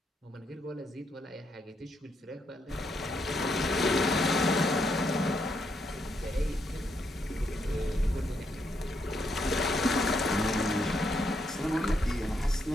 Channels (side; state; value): both; normal; correlation 0.77